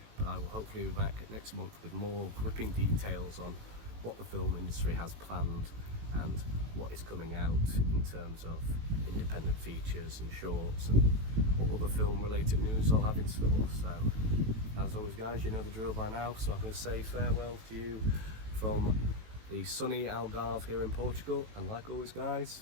but I will hopefully be back next month with more gripping details on what the film industry has planned and what is coming out in terms of independent features and shorts, and what other film related news I'll have in store. So as always guys, you know the drill by now, so I'm going to say farewell to you from the sunny Algarve here in Portugal, and like always guys,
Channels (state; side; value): late; left; 18 ms